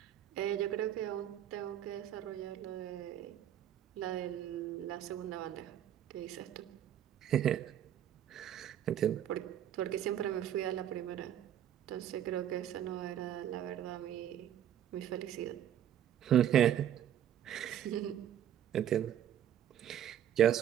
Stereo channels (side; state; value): left; quieter; 10.5 dB